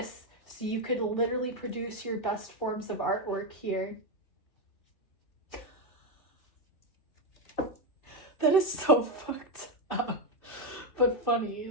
So you could literally produce your best forms of artwork here. That is so fucked up, but funny.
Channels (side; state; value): right; late; 2.7 ms